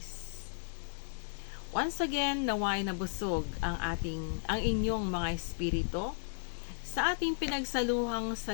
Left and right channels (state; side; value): silent; right; digital silence